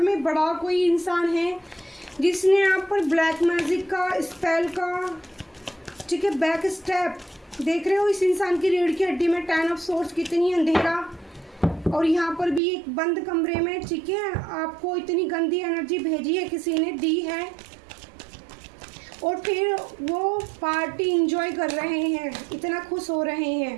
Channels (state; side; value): drops out; left; at 12.6 s